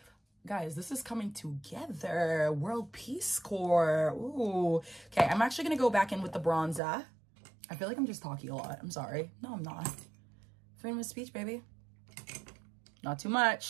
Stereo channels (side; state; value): left; drops out; at 6.8 s